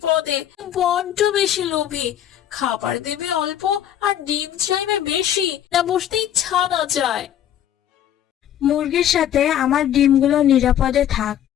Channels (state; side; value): quieter; right; 10.8 dB